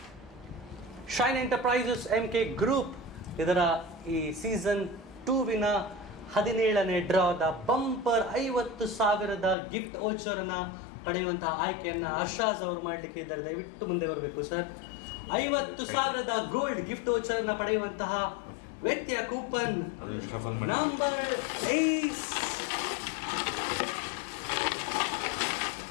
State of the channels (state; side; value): drops out; right; at 9.6 s